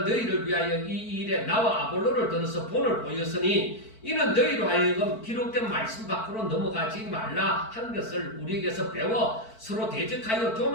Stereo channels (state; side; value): late; right; 4.5 ms